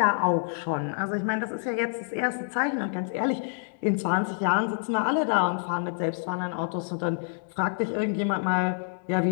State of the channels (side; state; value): right; silent; digital silence